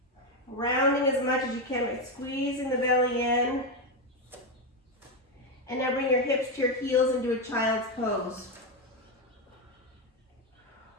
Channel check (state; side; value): normal; both; correlation 0.09